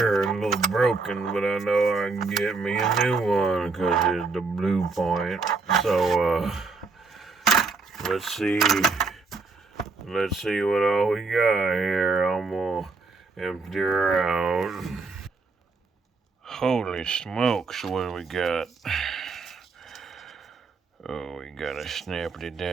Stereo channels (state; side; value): quieter; left; 4.1 dB